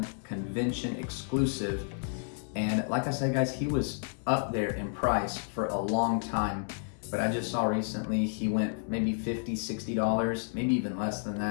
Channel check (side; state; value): right; silent; digital silence